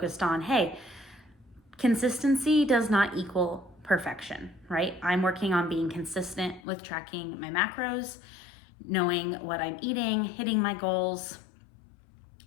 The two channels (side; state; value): right; drops out; at 6.6 s